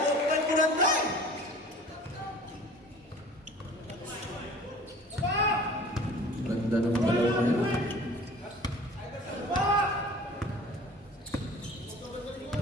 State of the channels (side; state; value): both; normal; correlation 0.45